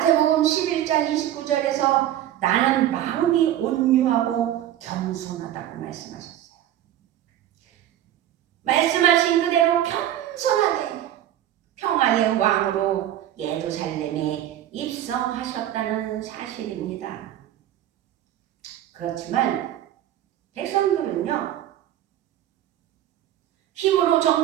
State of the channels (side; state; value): left; quieter; 12.1 dB